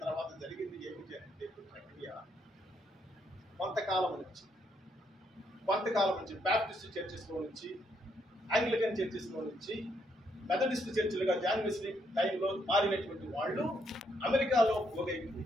తర్వాత జరిగింది ఏమిటి అంటే ప్రక్రియ కొంతకాలం నుంచి బ్యాప్టిస్ట్ చర్చెస్లో నుంచి, ఆంగ్లికన్ చర్చెస్లో నుంచి మెథడిస్ట్ చర్చిలుగా జాన్ వెస్లీ టైంలో మారినటువంటి వాళ్ళు అమెరికాలో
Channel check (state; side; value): normal; both; correlation 0.74